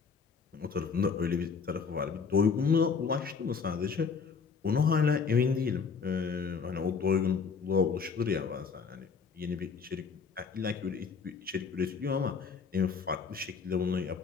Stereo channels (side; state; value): right; quieter; 5.6 dB